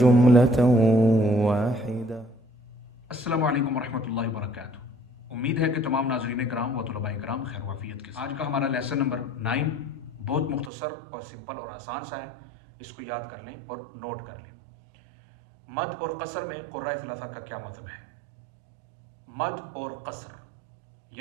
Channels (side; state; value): left; drops out; at 10.7 s